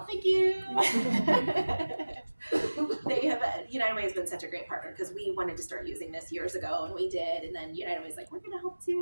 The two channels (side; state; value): both; inverted; correlation -1.00